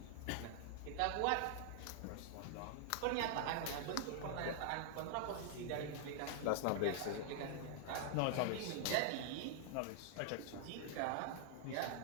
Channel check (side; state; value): both; different; correlation 0.00